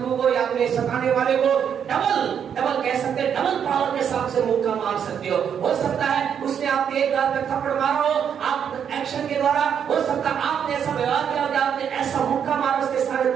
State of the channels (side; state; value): left; quieter; 8.1 dB